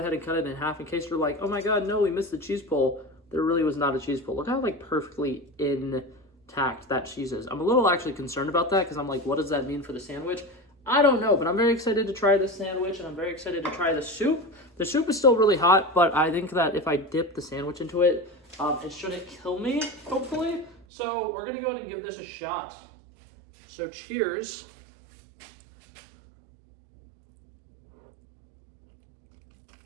ahead and cut it in half in case you're like, oh my god, no, we missed the cheese pull. There really was not a cheese pull. Look how like perfectly intact that cheese is. I'm a little actually concerned about that because I'm like, what does that mean for the sandwich? I don't know, but I'm very excited to try this sandwich, and I'm very excited to try the soup. The soup is still really hot, but I think that if I dip the sandwich into it, it shouldn't kill me, hopefully. So we're going to go ahead and give this a shot. So cheers.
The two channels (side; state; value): left; drops out; at 20.9 s